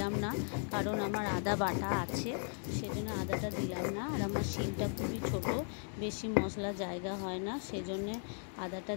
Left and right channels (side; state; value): right; silent; 53 dB below the other